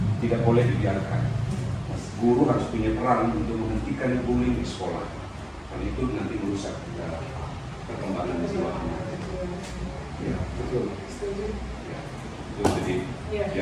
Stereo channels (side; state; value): both; identical; correlation 1.00